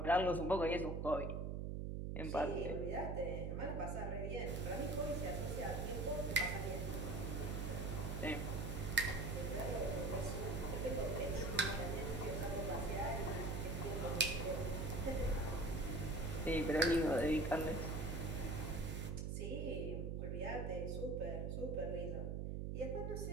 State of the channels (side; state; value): right; noise; hum, 2 dB below the sound